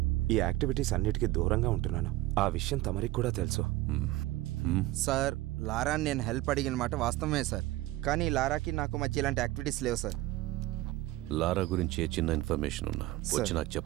ఈ యాక్టివిటీస్ అన్నిటికీ దూరంగా ఉంటున్నాను. ఆ విషయం తమరికి కూడా తెలుసు. సార్, లారాని నేను హెల్ప్ అడిగిన మాట వాస్తవమే సార్, కానీ లారాకి నాకు మధ్య ఇలాంటి యాక్టివిటీస్ లేవు సార్. లారా గురించి ఏ చిన్న ఇన్ఫర్మేషన్ ఉన్నా వచ్చి నాకు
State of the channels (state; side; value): quieter; left; 17.3 dB